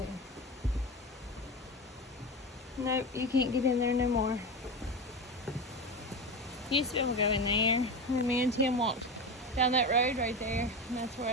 Nope, you can't get in there no more. Used to be able to go in there. And me and Tim walked down that road right there, and that's where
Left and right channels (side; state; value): both; normal; correlation 0.22